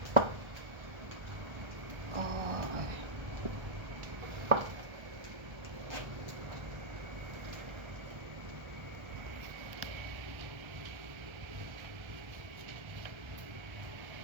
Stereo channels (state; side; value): late; left; 1.3 ms